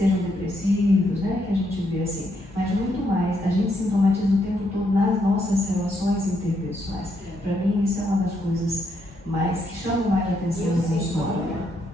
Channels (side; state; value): both; normal; correlation 0.76